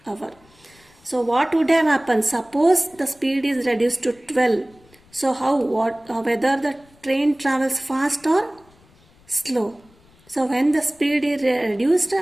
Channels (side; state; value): left; noise; rumble, 30 dB below the sound